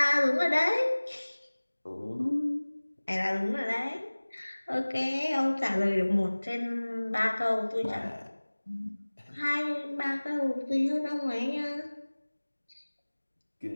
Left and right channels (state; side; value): inverted; both; correlation -1.00